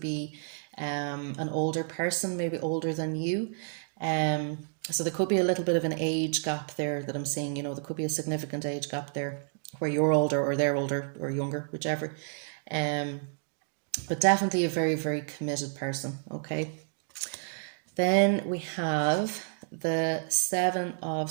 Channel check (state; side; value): silent; left; digital silence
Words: be an older person, maybe older than you. Um, so there could be a little bit of an age gap there that I'm seeing. There could be a significant age gap there, where you're older or they're older or younger, whichever. Um, but definitely a very, very committed person. Okay. Then we have the Seven of